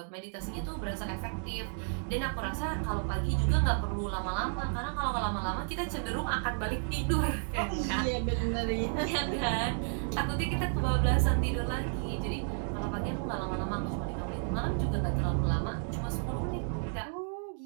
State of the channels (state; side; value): silent; left; 56 dB below the other